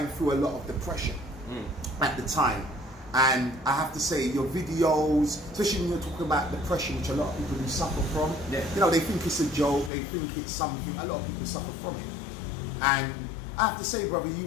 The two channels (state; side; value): drops out; right; at 9.9 s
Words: through a lot of depression at the time. And I have to say, your videos, especially when you're talking about depression, which a lot of people do suffer from, you know, they think it's a joke, they think it's something, a lot of people suffer from it. And I have to say, brother, you